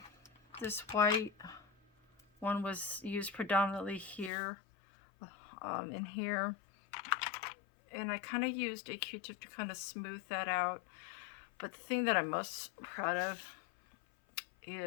This white one was used predominantly here, in here. And I kind of used a Q-tip to kind of smooth that out. But the thing that I'm most proud of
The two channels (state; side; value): drops out; right; at 4.3 s